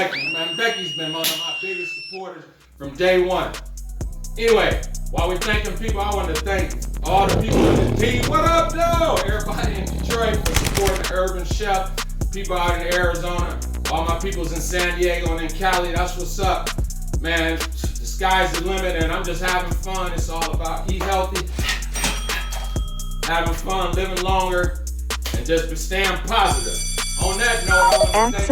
man. Becky's been one of my biggest supporters from day one. Anyway, While we're thanking people, I want to thank all the people in the team. What up, though? Everybody in Detroit for supporting the Urban Chef. People out in Arizona. All my peoples in San Diego and in Cali. That's what's up. Man, the sky's the limit and I'm just having fun. It's all about eat healthy, having fun, living longer, and just staying positive. On that note, I want to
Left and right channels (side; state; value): both; identical; correlation 1.00